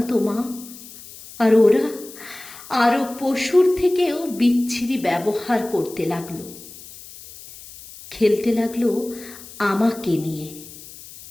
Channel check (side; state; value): left; noise; hiss, 17 dB below the sound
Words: তো মা। আর ওরা আরো পশুর থেকেও বিচ্ছিরি ব্যবহার করতে লাগলো, খেলতে লাগলো আমাকে নিয়ে।